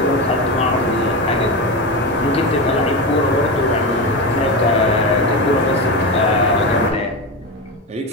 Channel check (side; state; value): both; normal; correlation 0.18